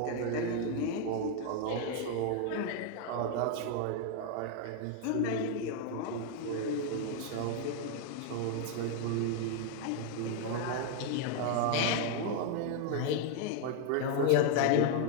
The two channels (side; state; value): both; different; correlation 0.00